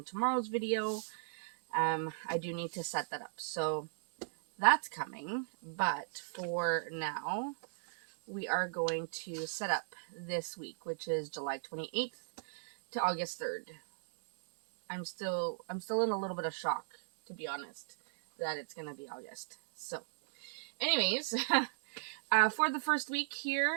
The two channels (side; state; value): left; silent; digital silence